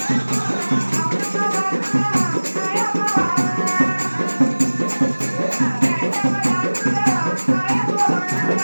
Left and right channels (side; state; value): both; inverted; correlation -1.00